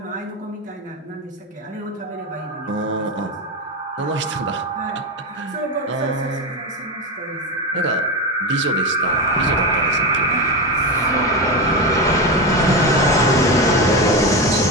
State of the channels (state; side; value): normal; both; correlation 0.16